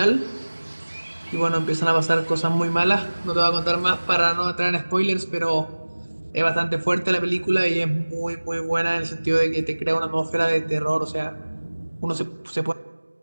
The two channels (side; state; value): both; inverted; correlation -1.00